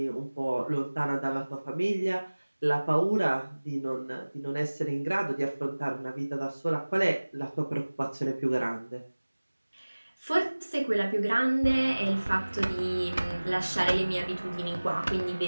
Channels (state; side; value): inverted; both; correlation -1.00